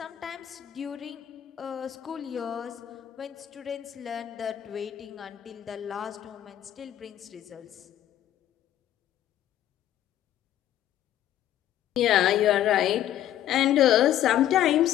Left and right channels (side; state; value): right; quieter; 12.0 dB